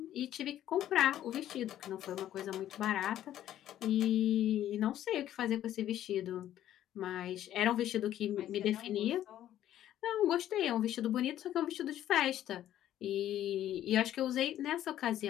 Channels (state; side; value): quieter; right; 12.1 dB